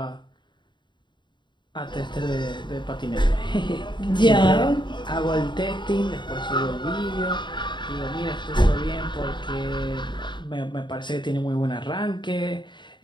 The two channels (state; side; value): late; right; 0.22 ms